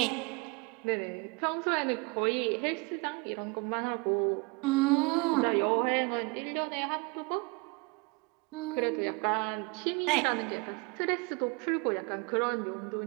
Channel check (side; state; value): left; quieter; 28.4 dB